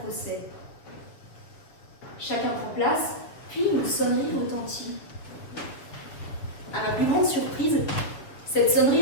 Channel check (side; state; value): right; late; 7.0 ms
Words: procès. Chacun prend place, puis une sonnerie retentit. À ma plus grande surprise, cette